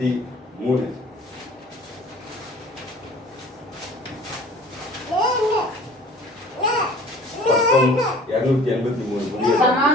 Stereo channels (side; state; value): both; normal; correlation 0.48